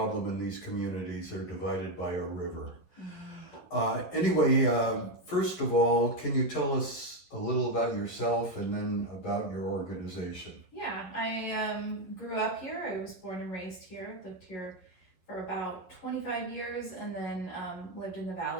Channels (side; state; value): right; late; 11 ms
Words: in these communities. They're divided by a river. Anyway, first of all, can you tell us a little about yourself and then about your organization? Yeah, I grew up here. I was born and raised here, lived here for about 25 years, and then lived in the